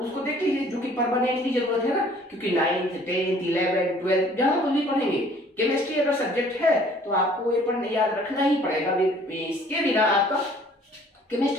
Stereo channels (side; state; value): both; normal; correlation 0.55